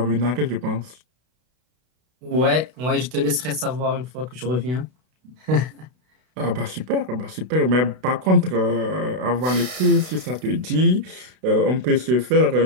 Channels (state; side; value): late; left; 32 ms